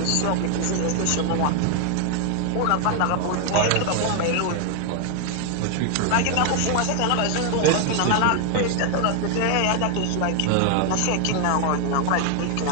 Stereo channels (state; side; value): different; both; correlation 0.01